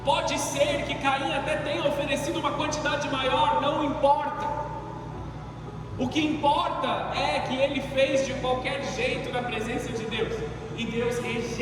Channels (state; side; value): identical; both; correlation 1.00